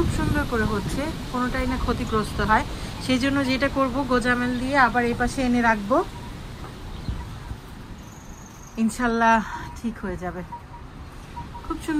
সুন্দর করে হচ্ছে, কোনোটাই না ক্ষতিগ্রস্ত হয়। সেই জন্য যেটা করব, গোজামেল দিয়ে আবার এই পাশে এনে রাখবো, ইনশাল্লাহ ঠিক হয়ে যাবে। খুব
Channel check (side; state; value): both; identical; correlation 1.00